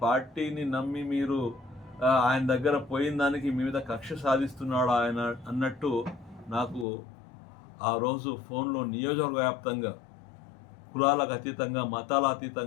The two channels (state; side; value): drops out; right; at 6.9 s